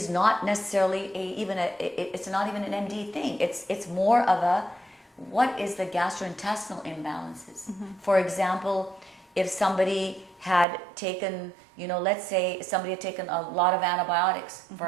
not necessarily it's not even an MD thing. It's more of what is the gastrointestinal imbalances? For example, if somebody had taken, you know, let's say somebody had taken a lot of antibiotics,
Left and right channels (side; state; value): left; drops out; at 10.7 s